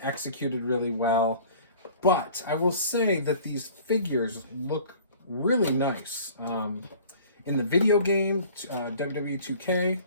executed really well. But I will say that these figures look really nice. In the video game, WWE 2K,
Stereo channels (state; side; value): inverted; both; correlation -0.48